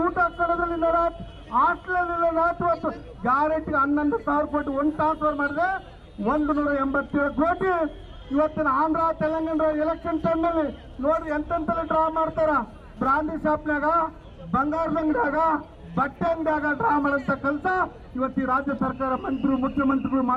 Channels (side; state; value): both; identical; correlation 1.00